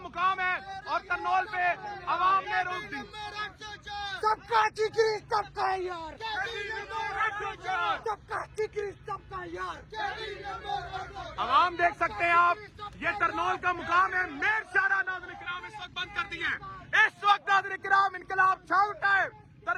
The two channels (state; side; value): identical; both; correlation 1.00